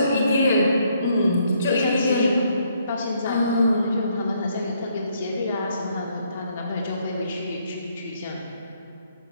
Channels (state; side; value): inverted; both; correlation -0.71